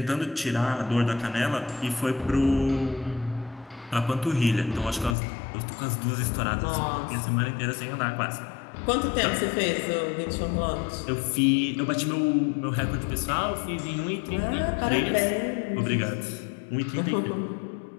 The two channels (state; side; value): drops out; right; at 5.2 s